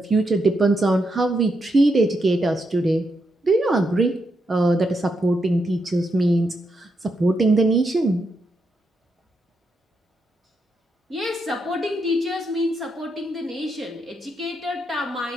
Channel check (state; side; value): normal; both; correlation 0.82